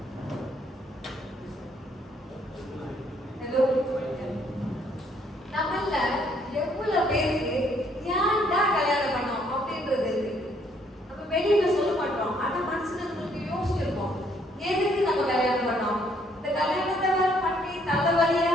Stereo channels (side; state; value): both; normal; correlation 0.67